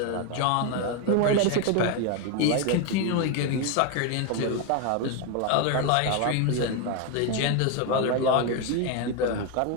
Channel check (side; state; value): both; different; correlation 0.02